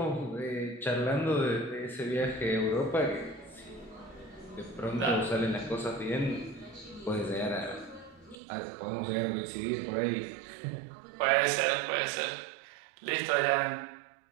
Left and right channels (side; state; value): left; drops out; at 8.3 s